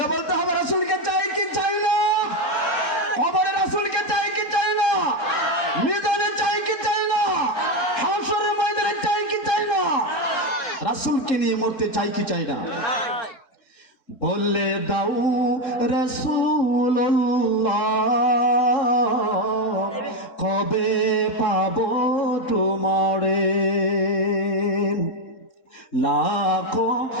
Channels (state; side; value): late; right; 3.7 ms